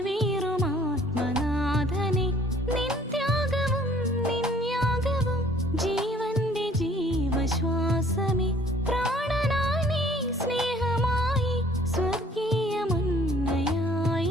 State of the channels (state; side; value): normal; both; correlation 0.56